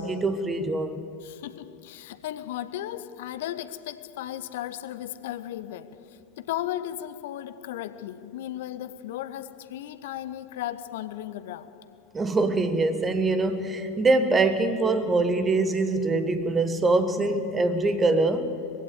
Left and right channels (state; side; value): normal; both; correlation 0.60